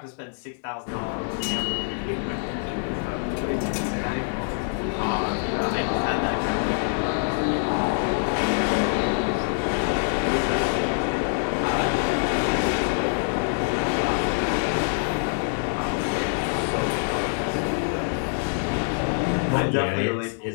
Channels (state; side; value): silent; right; digital silence